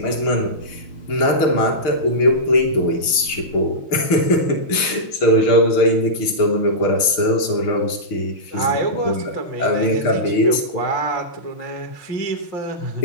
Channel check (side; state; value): right; late; 6.5 ms